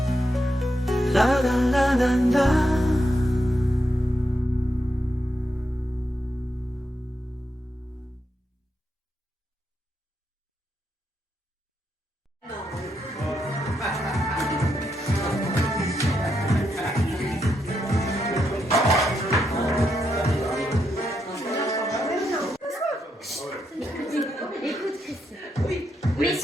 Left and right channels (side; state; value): both; normal; correlation 0.82